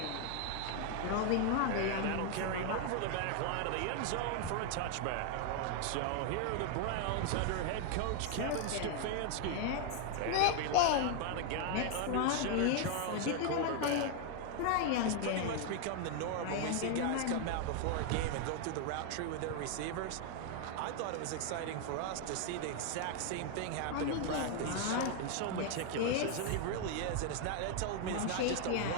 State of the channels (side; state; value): both; different; correlation 0.00